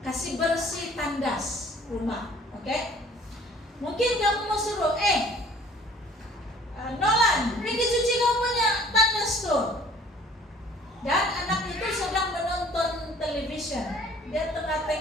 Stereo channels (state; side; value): normal; both; correlation 0.53